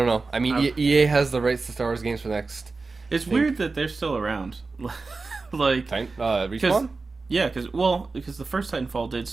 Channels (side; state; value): left; quieter; 3.9 dB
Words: know. I mean, EA has the rights to Star Wars games for the next. It's weird that they're still around. Like Respawn? Because the first Titanfall did